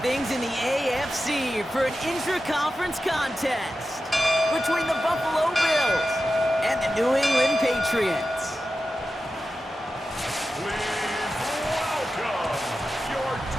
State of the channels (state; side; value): normal; both; correlation 0.92